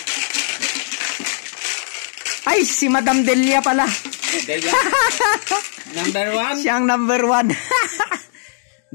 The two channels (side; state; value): right; silent; digital silence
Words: Ay, si Madam Delia pala. Delia. Number 1. Siyang number 1.